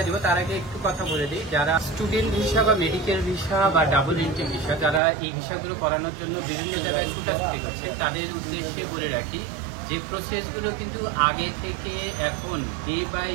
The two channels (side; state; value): left; drops out; at 5.0 s